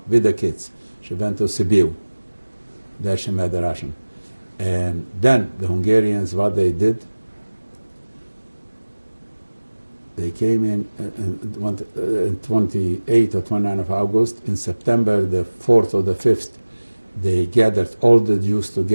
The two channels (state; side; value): inverted; both; correlation -1.00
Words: with the kids. She went to Sibiu. There she met the Russian. And then the Hungarians, what they did, they came in 28 or 29 of August. In September the 4th or the 5th, they gathered all the Jews